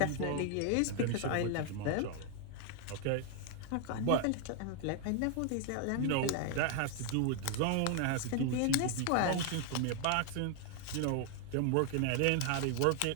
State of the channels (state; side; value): different; both; correlation 0.00